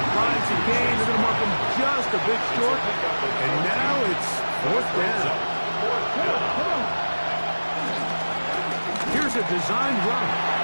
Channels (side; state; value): both; inverted; correlation -1.00